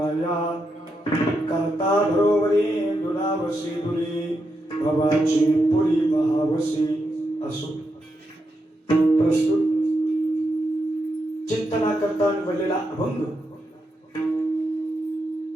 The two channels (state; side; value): normal; both; correlation 0.84